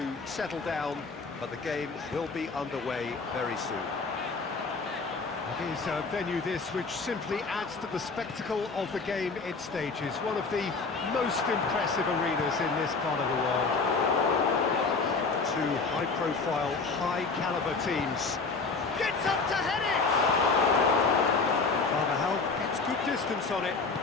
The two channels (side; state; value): right; quieter; 4.3 dB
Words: settle down, but the game will be underway very soon. It is a venue this which simply adds to the spectacle of the game it stages. One of the most impressive arenas in this part of the world. Two high-profile, high-caliber teams. Gets up to head it! Carvajal gets good distance on it.